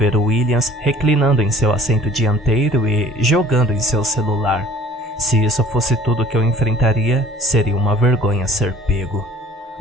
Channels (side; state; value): both; normal; correlation 0.51